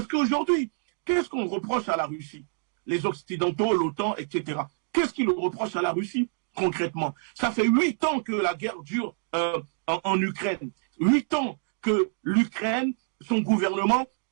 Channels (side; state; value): left; silent; digital silence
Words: qu'aujourd'hui, qu'est-ce qu'on reproche à la Russie? Les Occidentaux, l'OTAN, etc. Qu'est-ce qu'ils reprochent à la Russie concrètement? Ça fait 8 ans que la guerre dure en Ukraine. 8 ans que l'Ukraine, son gouvernement,